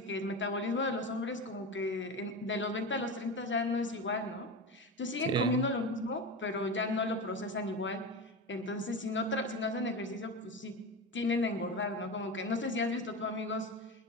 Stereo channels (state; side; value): normal; both; correlation 0.23